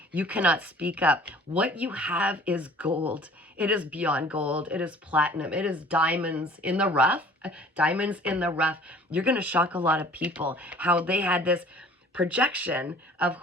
you cannot speak up. What you have is gold. It is beyond gold. It is platinum. It is diamonds in the rough. Diamonds in the rough. You're going to shock a lot of people how they had this projection of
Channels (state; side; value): normal; both; correlation 0.49